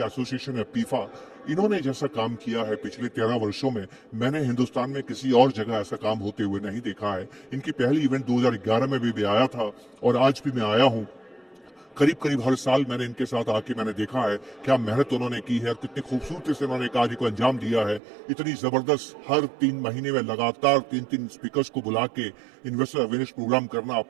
एसोसिएशन है पीफा, इन्होंने जैसा काम किया है पिछले 13 वर्षों में, मैंने हिंदुस्तान में किसी और जगह ऐसा काम होते हुए नहीं देखा है। इनकी पहली इवेंट 2011 में भी आया था, और आज भी मैं आया हूं। करीब करीब हर साल मैंने इनके साथ आके मैंने देखा है क्या मेहनत उन्होंने की है और कितनी खूबसूरती से उन्होंने कार्य को अंजाम दिया है। इतनी जबरदस्त हर 3 महीने में लगातार 3-3 स्पीकर्स को बुला के इन्वेस्टर अवेयरनेस प्रोग्राम करना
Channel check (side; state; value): left; drops out; at 18.0 s